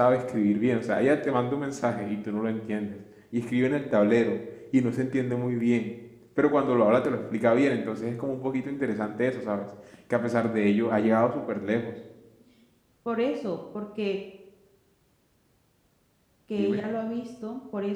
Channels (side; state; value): both; identical; correlation 1.00